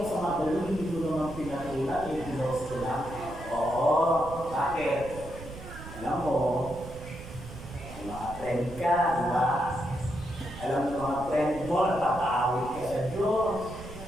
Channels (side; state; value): right; noise; rumble, 13 dB below the sound